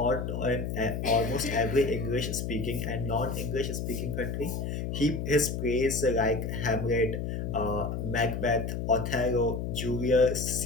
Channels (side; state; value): left; noise; hum, 3 dB below the sound